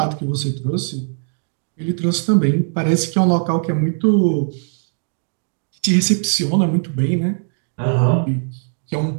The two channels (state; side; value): silent; left; digital silence